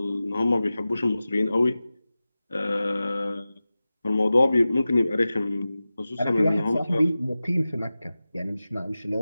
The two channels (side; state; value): both; inverted; correlation -0.95